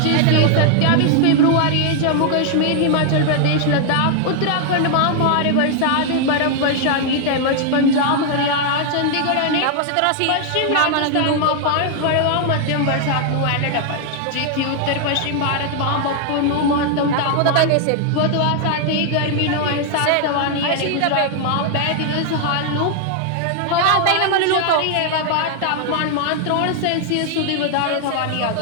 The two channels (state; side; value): different; both; correlation 0.00